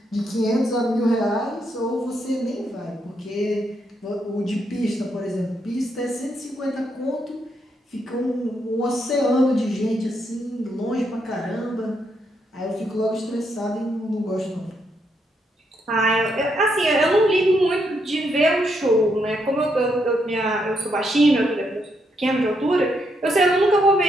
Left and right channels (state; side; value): normal; both; correlation 0.78